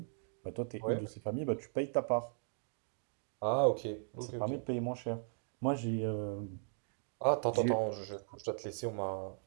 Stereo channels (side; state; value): left; silent; digital silence